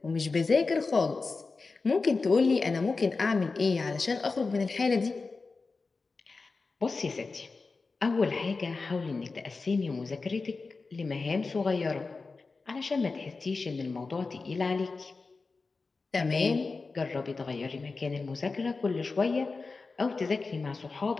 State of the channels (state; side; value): quieter; right; 4.1 dB